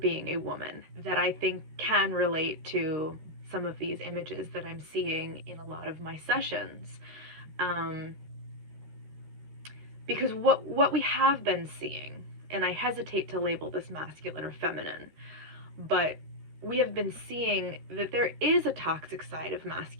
a woman that I think can relate to some of these images that I'm seeing in a lot of my sessions. Because what we have been seeing, and I hesitate to label this masculine or feminine, but we have been seeing that there is a toxic side of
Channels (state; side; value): late; left; 13 ms